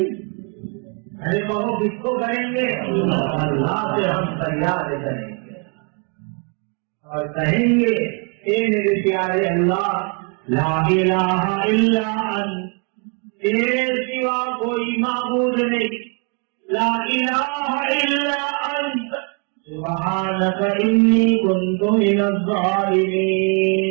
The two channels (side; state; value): left; quieter; 36.1 dB